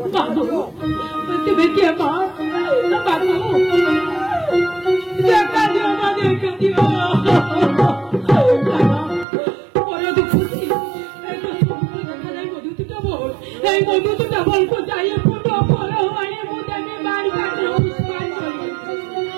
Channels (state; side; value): drops out; left; at 9.2 s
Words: তুমি কে মা বাবু দেখা দিও মা দেখা দিও বড় দুঃখী দেখা যায় মধুপুরা বন এই মধুপুরা বন কোথায় ফুটো ফল হয় মুদানে বাড়ি কাটলো পুষ্পান করে